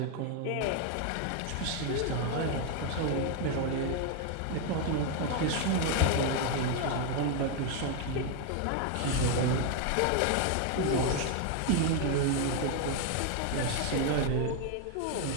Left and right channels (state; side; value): different; both; correlation 0.01